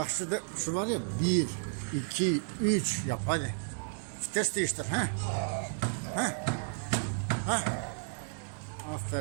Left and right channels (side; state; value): left; silent; digital silence